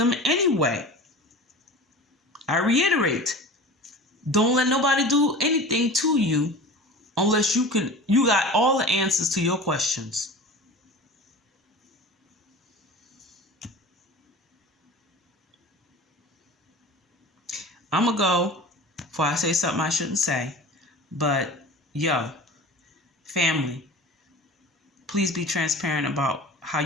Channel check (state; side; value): normal; both; correlation 0.36